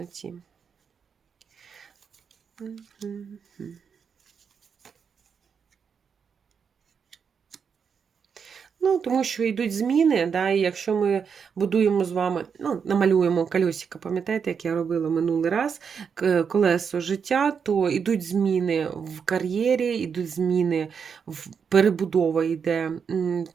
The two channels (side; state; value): left; quieter; 6.5 dB